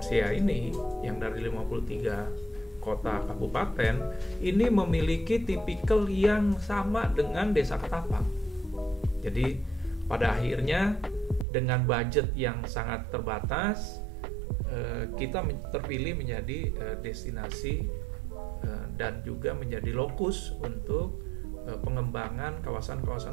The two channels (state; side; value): drops out; left; at 11.5 s